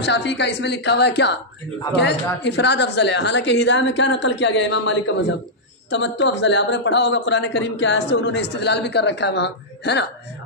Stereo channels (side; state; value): both; normal; correlation -0.09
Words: شافعی کا اس میں لکھا ہوا ہے کیا کہ افراد افضل ہے، حالانکہ ہدایہ میں کیا نقل کیا گیا امام مالک کا مذہب تمتع افضل ہے۔ آپ نے پڑھا ہوگا قرآن کریم کی آیت سے انہوں نے استدلال بھی کر رکھا ہے وہاں، ہے نا،